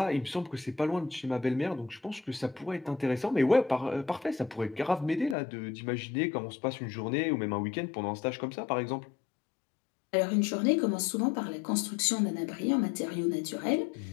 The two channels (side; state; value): right; drops out; at 5.4 s